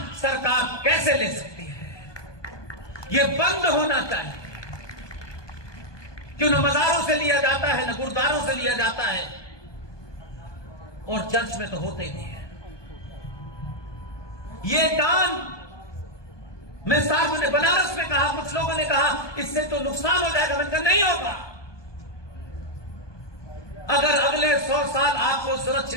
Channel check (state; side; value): late; right; 1.2 ms